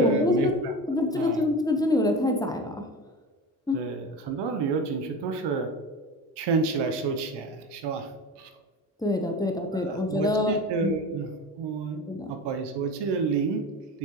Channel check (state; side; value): normal; both; correlation 0.29